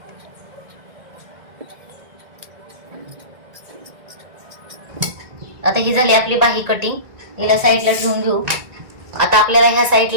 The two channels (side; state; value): left; late; 1.9 ms